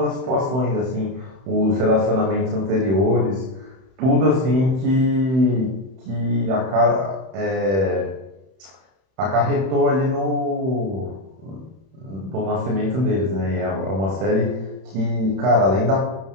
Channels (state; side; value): late; left; 31 ms